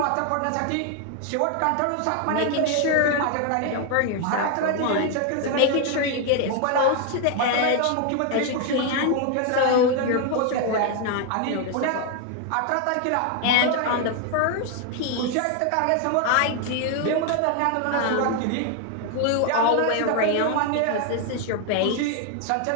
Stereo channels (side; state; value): both; different; correlation 0.01